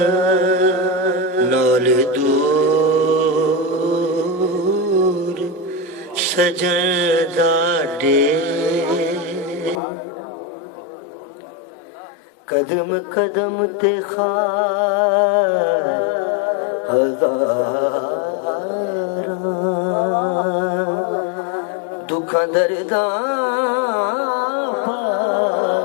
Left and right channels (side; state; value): right; drops out; at 9.8 s